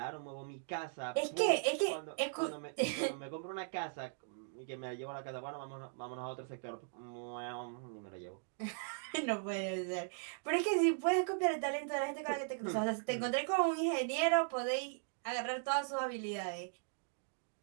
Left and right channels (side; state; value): left; silent; digital silence